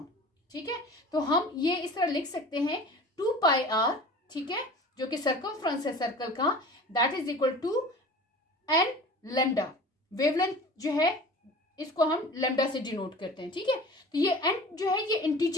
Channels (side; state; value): both; normal; correlation 0.40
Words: ठीक है, तो हम ये इस तरह लिख सकते हैं 2πr, ठीक है, जो कि सर्कमफ्रेंस है सर्कल का, that is equal to n lambda. Wavelength जो है इसको हम लैम्डा से डिनोट करते हैं। ठीक है, तो ये n जो है ये